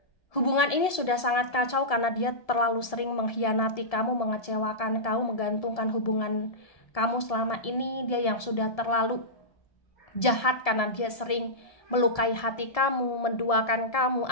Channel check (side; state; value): right; late; 1.7 ms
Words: hubungan ini sudah sangat kacau karena dia terlalu sering mengkhianati kamu, mengecewakan kamu, menggantungkan hubungan kamu selama ini. Dia yang sudah terlalu jahat karena dia sering melukai hati kamu, menduakan kamu,